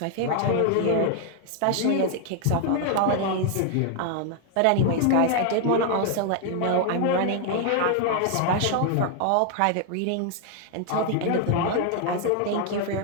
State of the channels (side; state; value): both; different; correlation 0.00